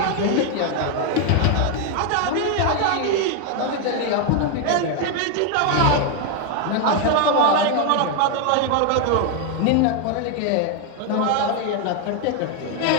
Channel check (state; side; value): different; both; correlation 0.01